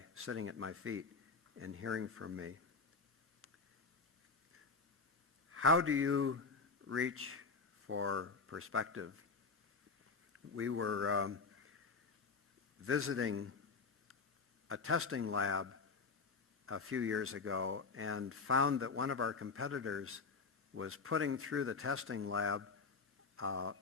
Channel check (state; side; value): quieter; right; 4.6 dB